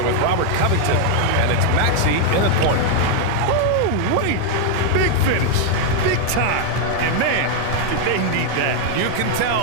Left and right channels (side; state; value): both; different; correlation 0.00